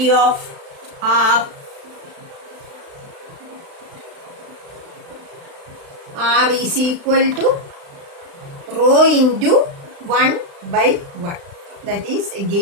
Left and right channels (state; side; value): late; left; 35 ms